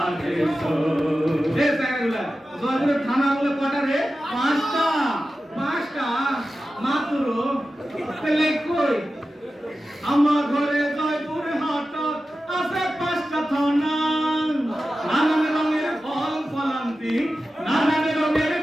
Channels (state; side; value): normal; both; correlation 0.93